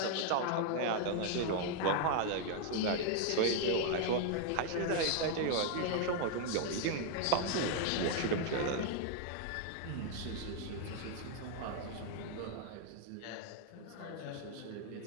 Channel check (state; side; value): different; both; correlation 0.00